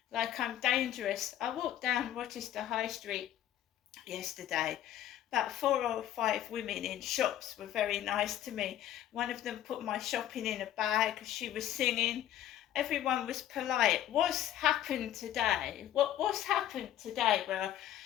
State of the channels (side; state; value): right; quieter; 11.9 dB